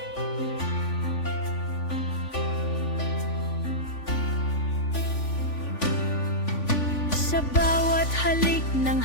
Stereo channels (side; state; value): right; late; 3.5 ms